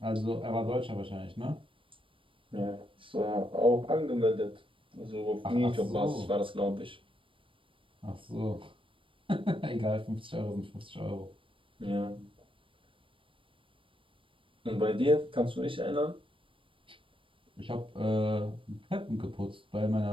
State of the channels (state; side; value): late; left; 0.25 ms